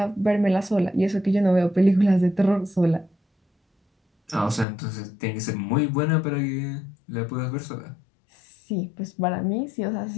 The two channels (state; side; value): drops out; right; at 4.7 s